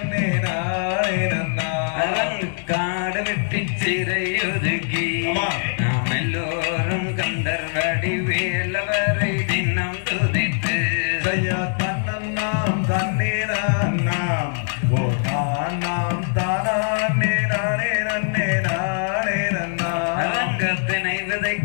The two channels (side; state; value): right; silent; 63 dB below the other